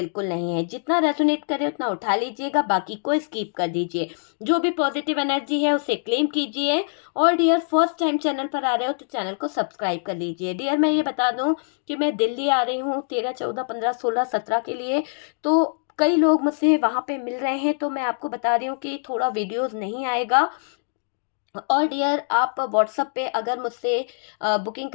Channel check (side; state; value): right; silent; digital silence